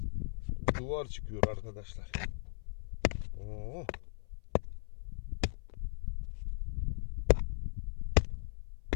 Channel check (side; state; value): right; silent; 53 dB below the other